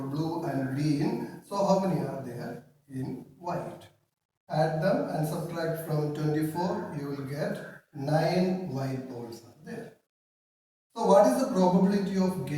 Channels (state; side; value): identical; both; correlation 1.00